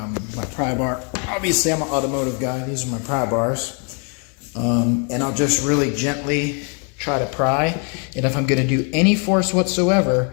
pry bar. Obviously, I'm an automotive guy. These are my pry bars. And I'll just really gently try to pry. And if I'm going to do any force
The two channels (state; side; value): quieter; right; 38.1 dB